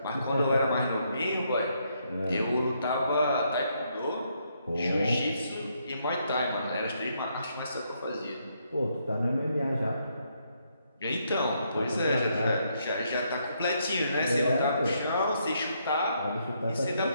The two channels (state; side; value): inverted; both; correlation -0.75